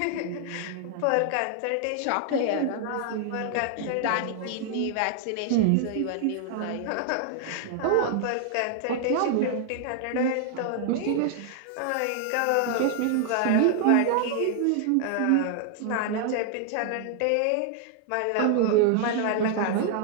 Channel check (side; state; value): both; different; correlation 0.00